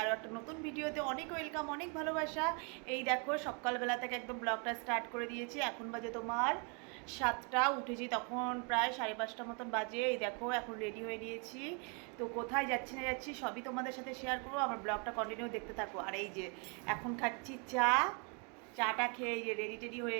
একটা নতুন ভিডিওতে অনেক ওয়েলকাম, অনেক ভালোবাসা। এই দেখো সকালবেলা থেকে একদম ব্লগটা স্টার্ট করে দিয়েছি। এখন বাজে তোমার 7টা, উঠেছি তখন প্রায় 5:30 মতন বাজে। এই দেখো এখন রেডি হয়ে নিয়েছি। তো কোথায় যাচ্ছি না যাচ্ছি সবই তোমাদের সাথে শেয়ার করবো। আমার ব্লগটা কন্টিনিউ দেখতে থাকো। আর এই যে এখন খাচ্ছি চাটা খেয়ে এই যে রেডি টেডি হয়ে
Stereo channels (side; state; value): left; quieter; 35.7 dB